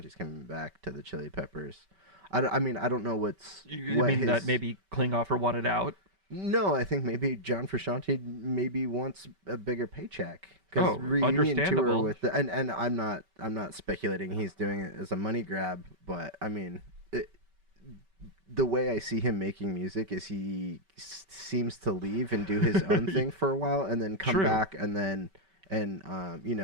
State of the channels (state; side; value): late; left; 5.2 ms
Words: coming back to the Chili Peppers. I don't know what's. You mean that maybe Klinghoffer wanted out? No, I think maybe John Frusciante maybe wants a bigger paycheck. Because reunion tour with and I'm not speculating he's doing it as a money grab, but I mean, the way I see him making music is he seems to leave and do his own thing for a while, and then come back and